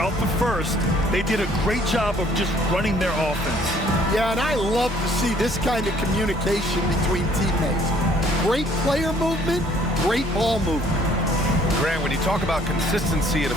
the first, they did a great job of just running their offense. Yeah, and I love to see this kind of communication between teammates. Great player movement, great ball movement. Grant, when you talk about consistency and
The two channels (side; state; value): both; normal; correlation 0.60